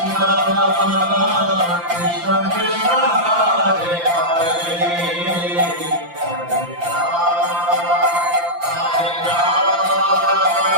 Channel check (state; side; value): late; left; 5.8 ms